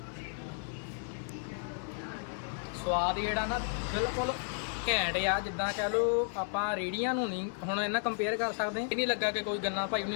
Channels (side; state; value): right; silent; 56 dB below the other